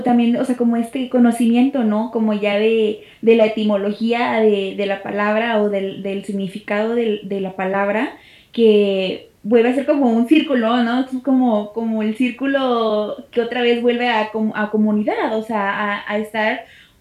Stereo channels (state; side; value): identical; both; correlation 1.00